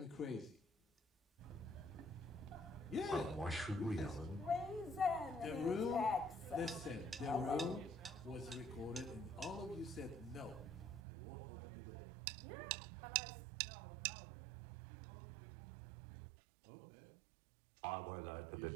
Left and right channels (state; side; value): drops out; left; at 11.0 s